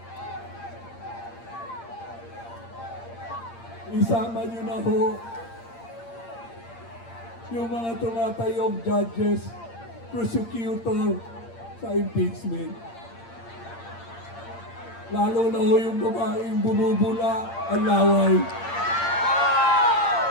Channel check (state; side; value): late; right; 8.7 ms